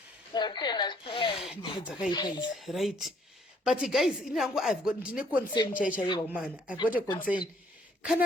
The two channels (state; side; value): normal; both; correlation 0.64